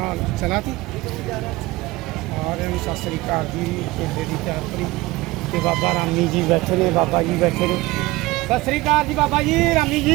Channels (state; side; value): quieter; left; 19.8 dB